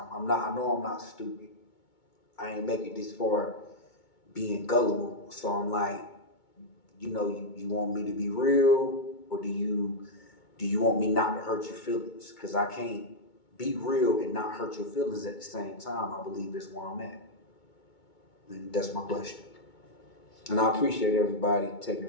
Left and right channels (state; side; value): late; right; 2.2 ms